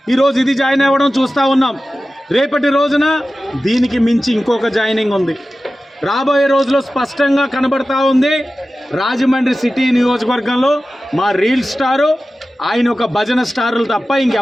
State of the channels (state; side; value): normal; both; correlation 0.95